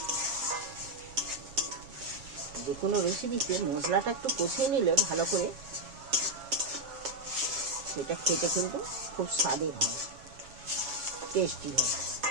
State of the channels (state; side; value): late; left; 7.3 ms